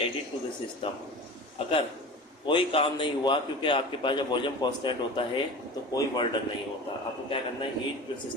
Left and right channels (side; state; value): both; normal; correlation 0.34